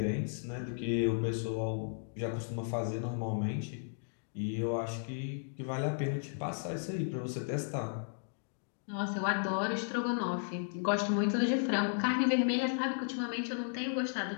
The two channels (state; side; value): silent; right; digital silence